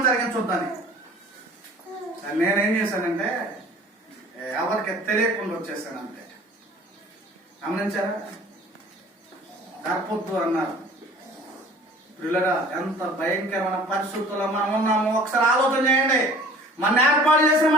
జరిగించొద్దని. నేనేం చేశానంటే ఎవరికి తెలియకుండా వచ్చేసాను అంతే. గమనించారా? గర్భొద్దు అన్నారు. పిల్లరా, ఎంత భయంకరమైన పరిస్థితుల్లో మనం ఉన్నామో ఒకసారి ఆలోచన చేయండి. మన ఏర్పాటు చేసిన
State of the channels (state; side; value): normal; both; correlation 0.48